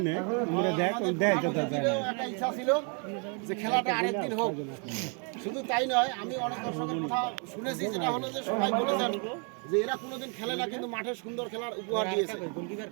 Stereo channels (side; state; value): left; quieter; 37.7 dB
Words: একটা ইচ্ছা ছিল যে খেলাটা আরেকদিন হোক। শুধু তাই নয়, আমি অনেক দর্শকের কথা শুনেছি, যেটা হলো যে সবাই বলেছেন যে এরা কোনোদিন খেলে না, কিন্তু মাঠে সুন্দর খেলার উপহার দিয়েছে।